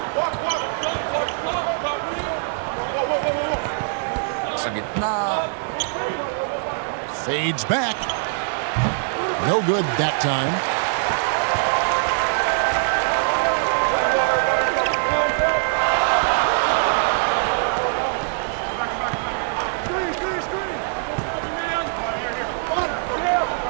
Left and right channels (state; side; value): silent; left; 64 dB below the other